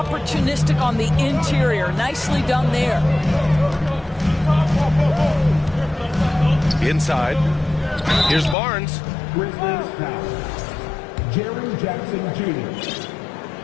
on the interior. Nicely done there. Inside. Here's Barnes. Jerry Jackson Jr.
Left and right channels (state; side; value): drops out; right; at 8.6 s